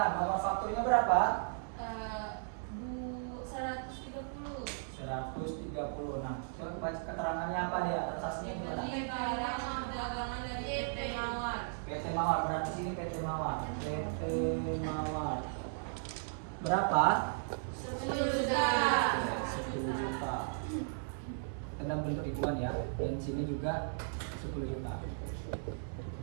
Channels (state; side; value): silent; left; 54 dB below the other